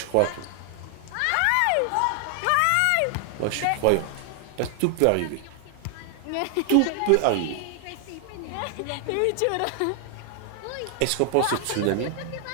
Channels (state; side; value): different; both; correlation 0.00